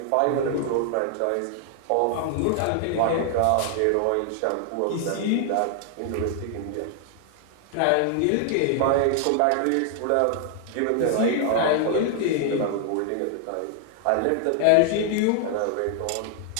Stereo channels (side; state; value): both; different; correlation -0.01